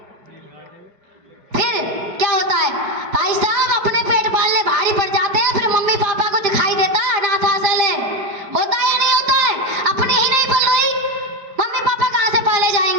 क्या होता है? भाई साहब, अपने पेट पालने भारी पड़ जाते हैं, फिर मम्मी पापा को दिखाई देता अनाथ आश्रय है। होता है या नहीं होता है? अपने ही नहीं पल रही, मम्मी पापा कहाँ से पाले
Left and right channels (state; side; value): late; left; 5.2 ms